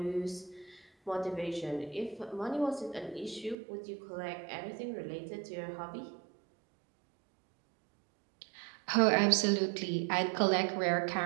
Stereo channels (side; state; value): left; drops out; at 3.6 s